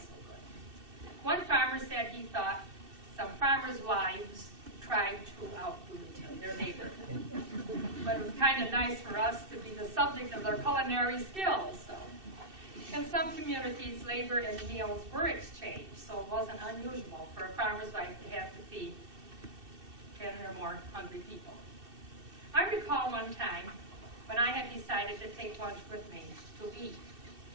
good. One farmer said he thought some farmers' wives tried to outdo their neighbor. But it was kind of nice for us to be the subject of their culinary skills. So, in some communities, labor and meals were exchanged, so it wasn't unusual for a farmer's wife to have to feed 10 or more hungry people. I recall one time when I had decided to take lunch with me to eat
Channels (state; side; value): late; left; 2.6 ms